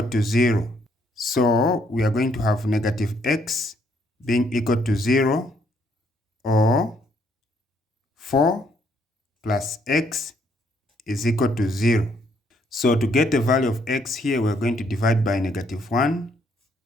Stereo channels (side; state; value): both; normal; correlation 0.70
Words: to 0. So we are going to have negative x being equal to 0, or 4 plus x is equal to 0. So to get the value of x here, we're going to divide by negative 1,